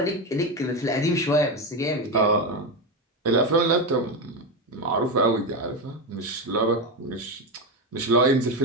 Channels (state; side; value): normal; both; correlation 0.14